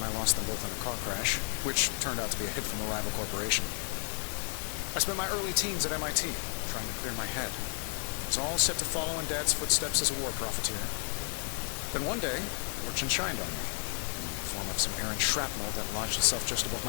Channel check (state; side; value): silent; right; digital silence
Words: I lost them both in a car crash, which turned out to be a hit from a rival corporation. I spent my early teens at MIT, trying to clear my head. It was all set to follow in Dad's footsteps as a war profiteer. Then one day, fortune shined on me, in the form of some errant shrapnel that lodged itself just above